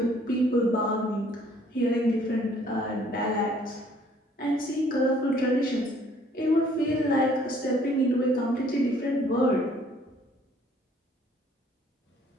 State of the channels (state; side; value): normal; both; correlation 0.60